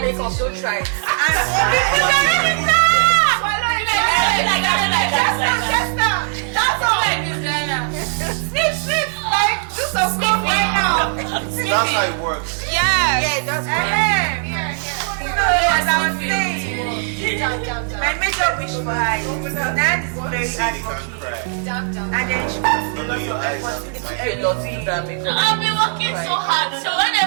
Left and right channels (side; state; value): left; silent; 67 dB below the other